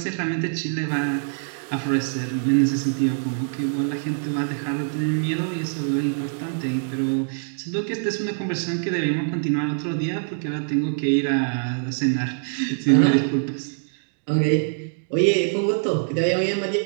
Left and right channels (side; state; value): left; silent; digital silence